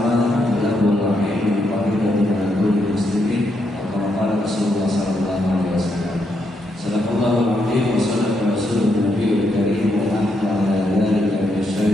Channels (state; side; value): normal; both; correlation 0.79